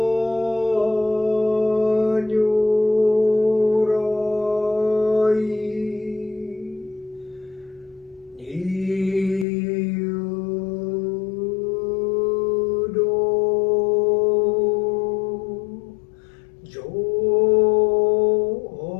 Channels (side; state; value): right; drops out; at 9.5 s